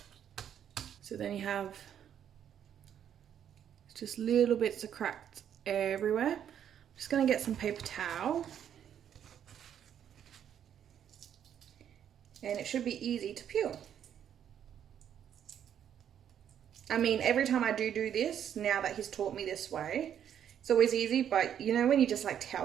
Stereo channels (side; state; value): left; quieter; 9.4 dB